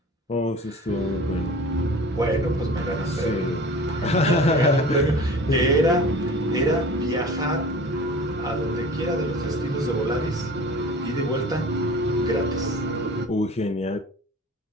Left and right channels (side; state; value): both; normal; correlation 0.41